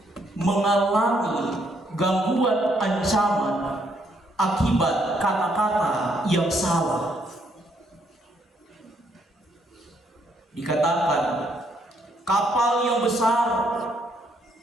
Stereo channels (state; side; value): normal; both; correlation 0.72